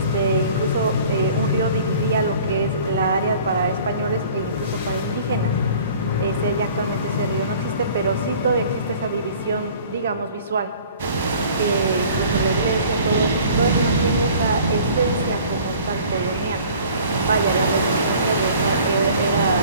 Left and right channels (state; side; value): inverted; both; correlation -0.50